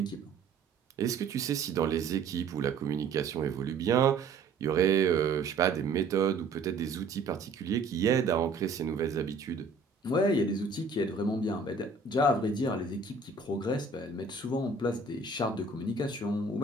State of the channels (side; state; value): left; quieter; 4.0 dB